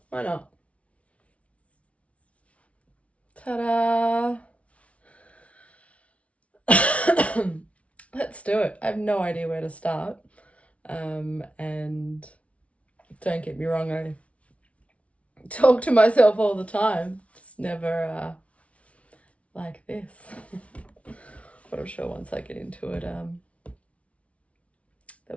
why not? Ta-da! Let's do it. I have no idea where to start. And don't get me wrong, I talk to myself all the time. Just never like this. But I'm sure once I get into it,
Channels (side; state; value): right; late; 0.064 ms